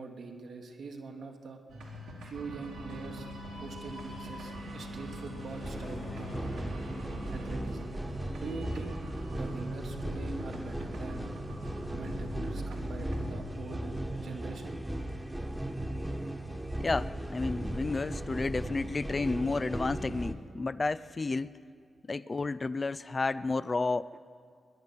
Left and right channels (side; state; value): both; normal; correlation 0.93